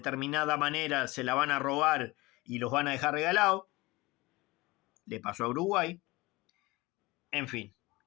manera se la van a robar y los van a dejar regalados. Le pasó a Uruguay. En fin.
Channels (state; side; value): quieter; right; 21.6 dB